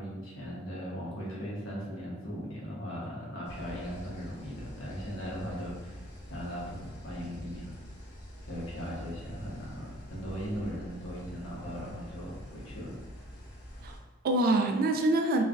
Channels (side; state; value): both; normal; correlation 0.52